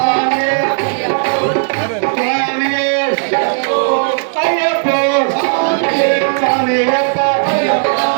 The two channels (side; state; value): left; silent; digital silence